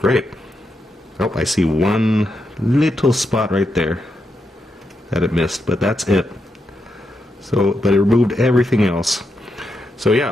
great. Oh, I see one little spot right there that it missed, but that's it. So, but it removed everything else. So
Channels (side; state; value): both; normal; correlation 0.84